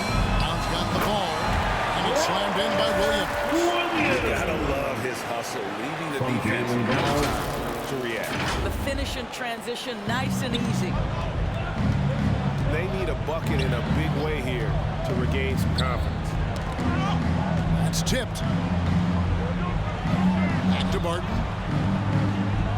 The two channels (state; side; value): identical; both; correlation 1.00